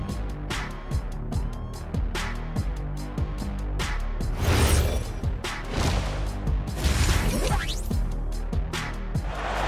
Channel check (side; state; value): both; identical; correlation 1.00